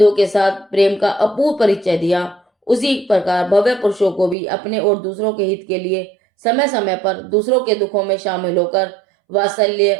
के साथ प्रेम का अपूर्व परिचय दिया, उसी प्रकार भव्य पुरुषों को भी अपने और दूसरों के हित के लिए समय समय पर दूसरों के दुखों में शामिल होकर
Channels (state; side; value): drops out; left; at 4.4 s